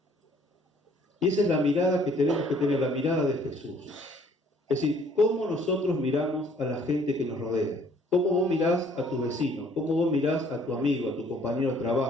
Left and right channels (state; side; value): normal; both; correlation 0.60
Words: Y esa es la mirada que tenemos que tener, la mirada de Jesús. Es decir, ¿cómo nosotros miramos a la gente que nos rodea? ¿Cómo vos mirás a tu vecino? ¿Cómo vos mirás a tu amigo, a tu compañero de